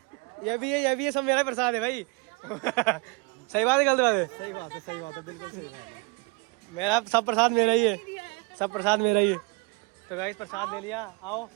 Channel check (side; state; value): left; quieter; 30.2 dB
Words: भी है, सब मेरा प्रसाद है भाई। सही बात है, गलत बात है? सही बात है, बिल्कुल सही बात है। मेरा सब प्रसाद मेरा ही है, सब प्रसाद मेरा ही है। तो गाइस प्रसाद ले लिया, आओ